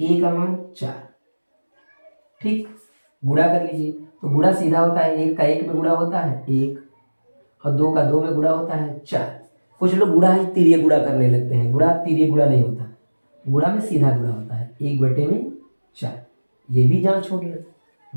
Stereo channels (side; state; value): both; inverted; correlation -1.00